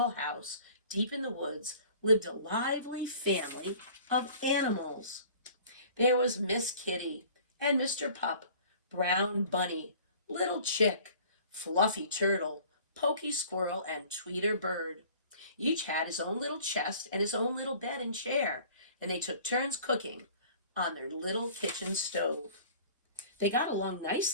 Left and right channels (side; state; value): both; inverted; correlation -0.48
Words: house deep in the woods, lived a lively family of animals. There was Miss Kitty and Mr. Pup, Brown Bunny, Little Chick, Fluffy Turtle, Pokey Squirrel, and Tweeter Bird. Each had his own little chest and his own little bed and chair, and they took turns cooking on their little kitchen stove. They got along